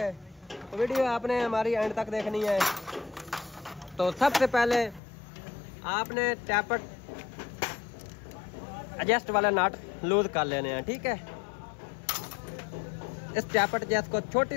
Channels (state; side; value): drops out; right; at 5.0 s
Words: तो वीडियो आपने हमारी एंड तक देखनी है। तो सबसे पहले आपने टैपट एडजस्ट वाला नट लूज कर लेने हैं, ठीक है। इस टैपट जैस को